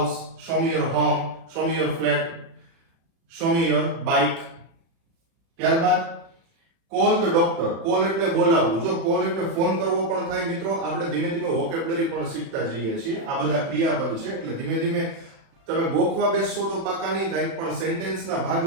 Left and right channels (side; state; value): left; late; 36 ms